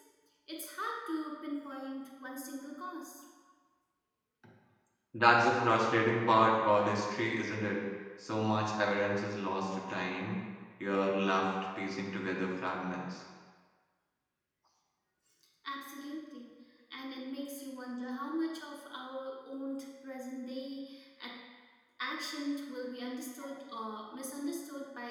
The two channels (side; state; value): both; identical; correlation 1.00